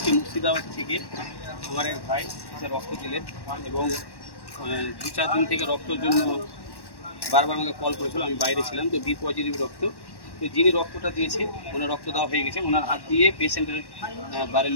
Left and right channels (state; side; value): late; right; 1.1 ms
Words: মুর্শিদাবাদ থেকে আমার এক ভাই সে রক্ত দিলেন এবং 2-4 দিন থেকে রক্তের জন্য বারবার আমাকে কল করেছিল। আমি বাইরে ছিলাম, তো বি পজিটিভ রক্ত। তো যিনি রক্তটা দিয়েছে ওনার রক্ত দেওয়া হয়ে গেছে, ওনার হাত দিয়ে পেশেন্টের বাড়ির